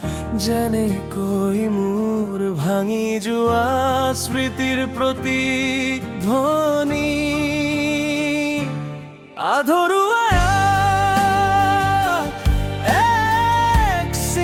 যেনে কৈ মোৰ ভাঙি যোৱা স্মৃতিৰ প্ৰতিধ্বনি আধৰুৱা এক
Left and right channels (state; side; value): identical; both; correlation 1.00